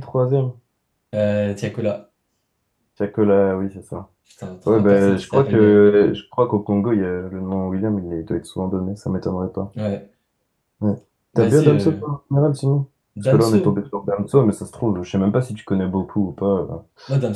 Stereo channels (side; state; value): both; identical; correlation 1.00